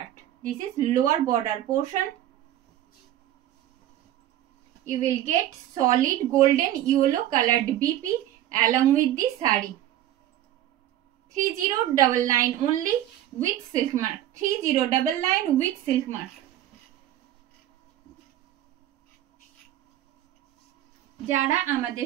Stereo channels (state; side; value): quieter; left; 12.7 dB